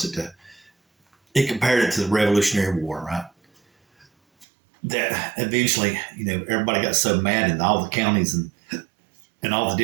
It compared it to the Revolutionary War, right? That eventually, everybody got so mad in all the counties and all the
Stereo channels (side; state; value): left; drops out; at 4.5 s